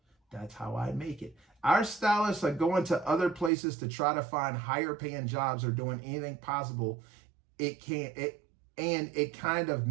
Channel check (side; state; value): left; drops out; at 3.5 s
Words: That's how I make it. Our stylists are going to other places to try to find higher paying jobs or doing anything possible. It kind of